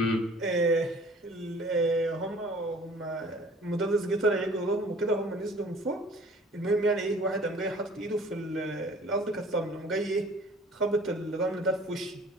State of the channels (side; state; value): both; normal; correlation 0.50